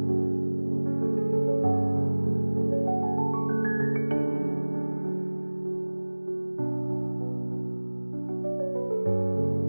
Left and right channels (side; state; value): both; inverted; correlation -1.00